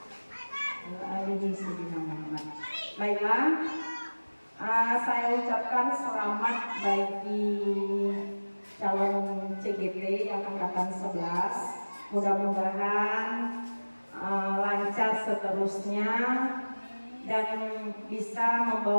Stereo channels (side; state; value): both; inverted; correlation -1.00